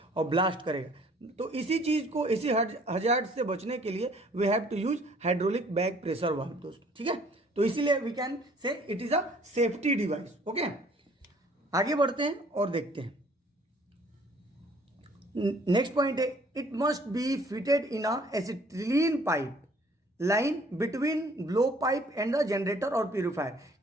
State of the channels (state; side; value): normal; both; correlation 0.57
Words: और ब्लास्ट करेगा। तो इसी चीज़ को, इसी हजार्ड से बचने के लिए we have to use hydraulic back pressure valve दोस्तों, ठीक है। तो इसीलिए we can say it is a safety device. Okay, आगे बढ़ते हैं और देखते हैं। नेक्स्ट पॉइंट है, it must be fitted in a acetylene pipe line between blow pipe and the generator और प्यूरिफायर।